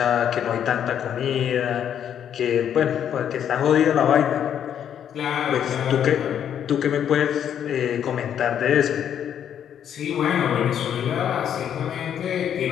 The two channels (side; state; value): right; quieter; 9.2 dB